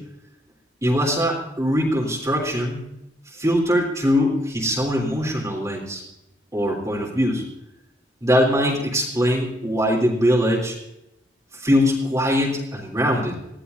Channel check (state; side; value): normal; both; correlation 0.72